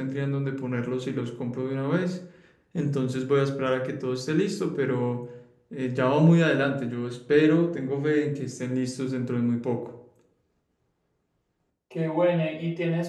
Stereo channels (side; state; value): both; identical; correlation 1.00